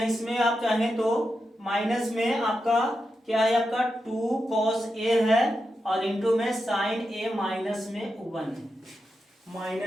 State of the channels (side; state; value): both; normal; correlation 0.88